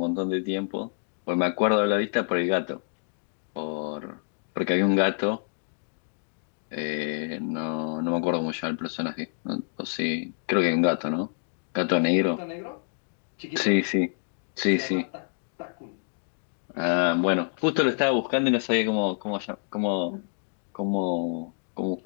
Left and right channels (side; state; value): right; silent; digital silence